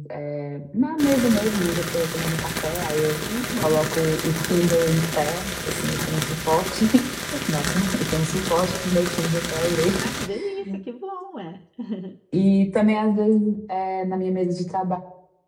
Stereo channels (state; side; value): identical; both; correlation 1.00